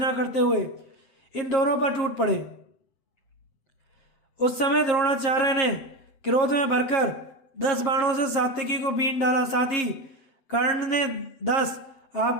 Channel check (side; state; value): right; late; 7.8 ms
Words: करते हुए इन दोनों पर टूट पड़े। उस समय द्रोणाचार्य ने क्रोध में भरकर 10 बाणों से सात्यकी को बीन डाला। साथ ही कर्ण ने 10,